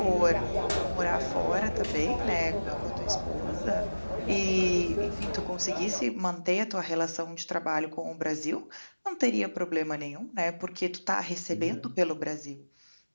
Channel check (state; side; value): inverted; both; correlation -1.00